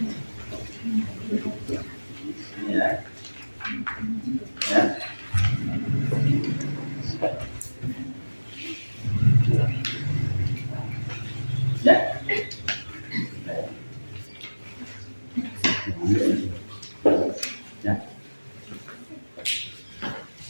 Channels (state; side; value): inverted; both; correlation -1.00